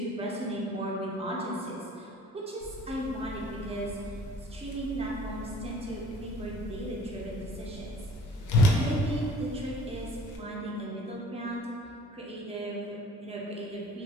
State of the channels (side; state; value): both; normal; correlation 0.50